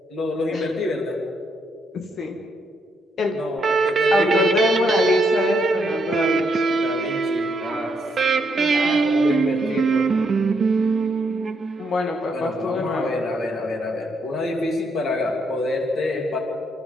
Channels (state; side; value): normal; both; correlation 0.76